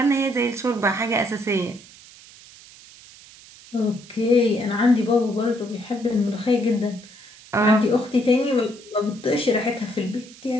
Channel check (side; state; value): right; noise; hiss, 21 dB below the sound